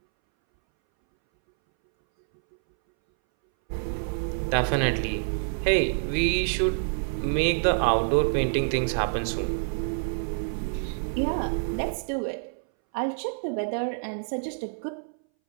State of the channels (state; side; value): silent; left; 60 dB below the other